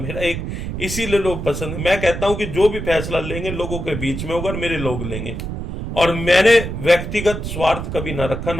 एक इसीलिए लोग पसंद, मैं कहता हूं कि जो भी फैसला लेंगे लोगों के बीच में होगा, मेरे लोग लेंगे। और मैंने व्यक्तिगत स्वार्थ कभी ना रखा,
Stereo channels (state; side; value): noise; right; rumble, 5 dB below the sound